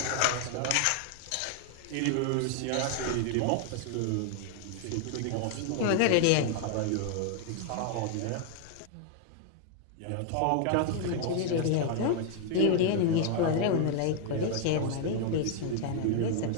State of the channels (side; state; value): both; different; correlation 0.00